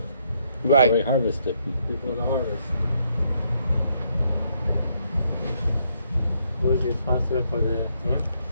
Right. Before we harvest it. Before the harvest. Who is responsible for the him?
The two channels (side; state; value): both; inverted; correlation -0.73